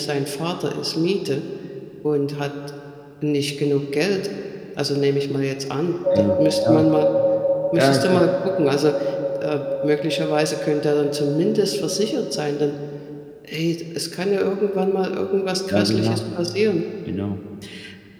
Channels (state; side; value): identical; both; correlation 1.00